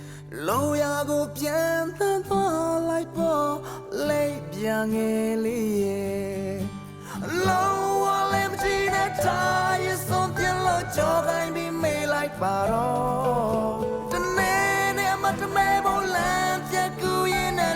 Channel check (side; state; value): both; identical; correlation 1.00